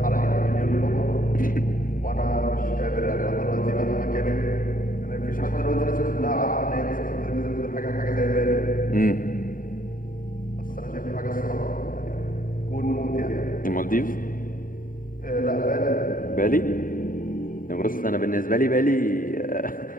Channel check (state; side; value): late; right; 0.40 ms